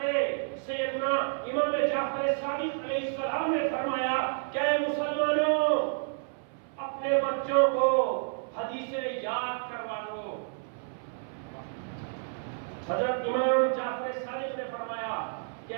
سیدنا امام جعفر صادق علیہ السلام نے فرمایا کہ اے مسلمانوں، اپنے بچوں کو حدیثیں یاد کروا دو۔ حضرت امام جعفر صادق نے فرمایا کہ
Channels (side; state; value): left; silent; 55 dB below the other